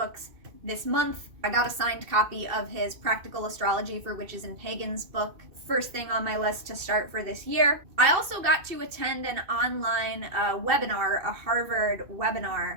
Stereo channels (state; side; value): late; left; 2.7 ms